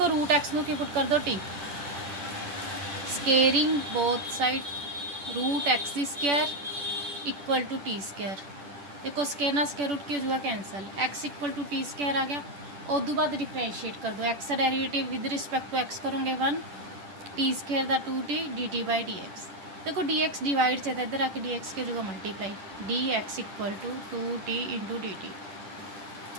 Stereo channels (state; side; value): late; left; 10 ms